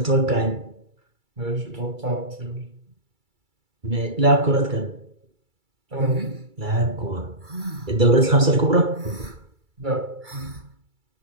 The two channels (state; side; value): late; left; 2.3 ms